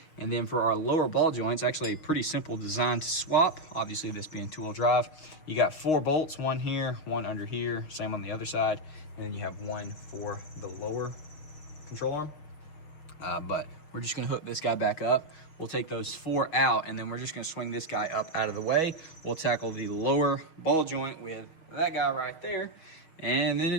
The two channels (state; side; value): late; right; 6.4 ms